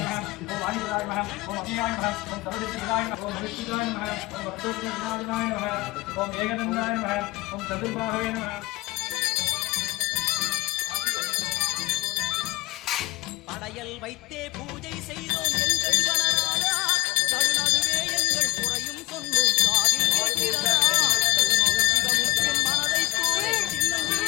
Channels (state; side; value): quieter; right; 19.5 dB